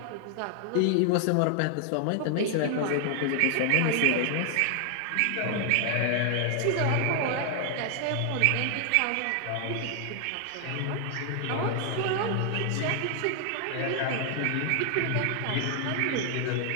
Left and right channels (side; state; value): both; different; correlation 0.00